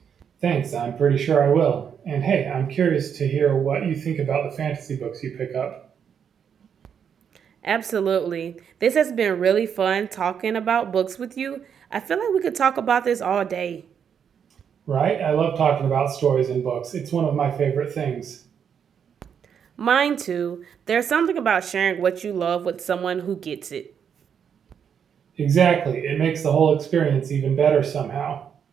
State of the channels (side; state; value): left; quieter; 7.7 dB